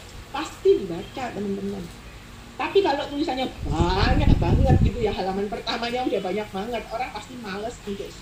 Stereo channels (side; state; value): both; identical; correlation 1.00